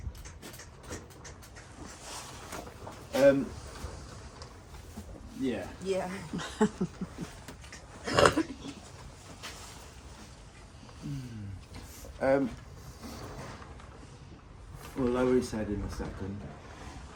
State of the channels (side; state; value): both; identical; correlation 1.00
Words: yeah. Yeah. We'll lower his head in a second.